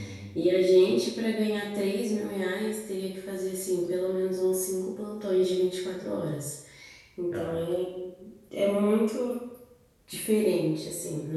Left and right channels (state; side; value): identical; both; correlation 1.00